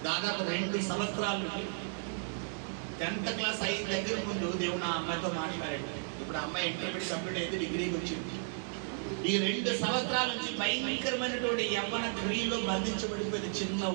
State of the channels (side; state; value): left; silent; digital silence